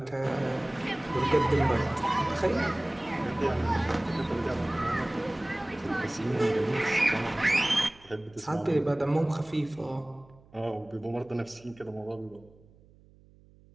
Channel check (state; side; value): noise; right; hum, 27 dB below the sound